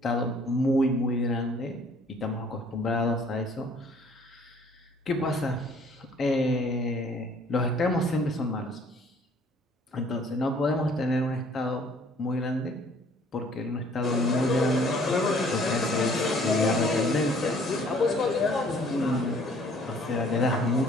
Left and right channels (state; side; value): normal; both; correlation 0.57